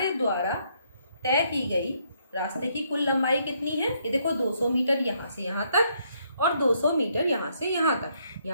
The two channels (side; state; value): both; inverted; correlation -0.72